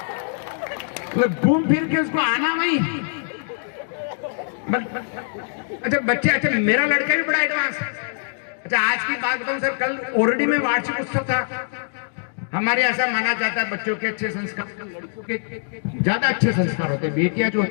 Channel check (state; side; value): silent; right; digital silence